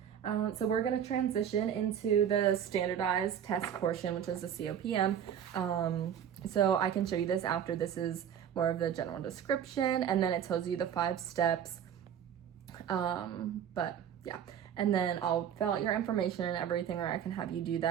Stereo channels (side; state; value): left; quieter; 9.0 dB